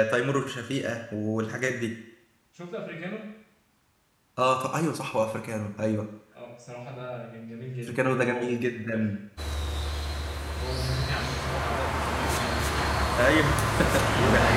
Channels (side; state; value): both; identical; correlation 1.00